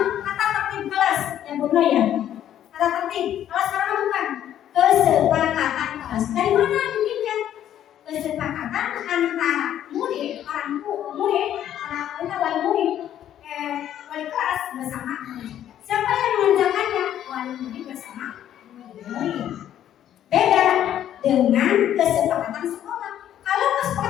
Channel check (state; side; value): quieter; right; 11.0 dB